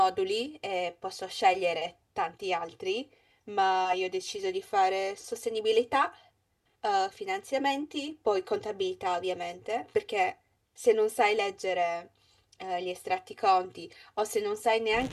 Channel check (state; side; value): identical; both; correlation 1.00